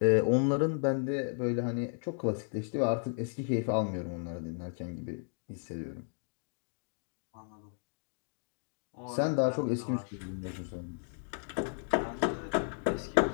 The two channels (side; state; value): right; silent; 55 dB below the other